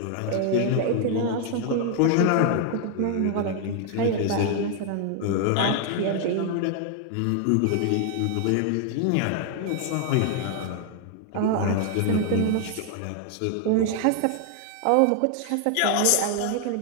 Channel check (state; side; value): different; both; correlation 0.00